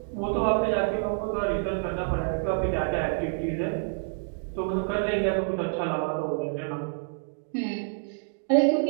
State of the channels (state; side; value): silent; left; digital silence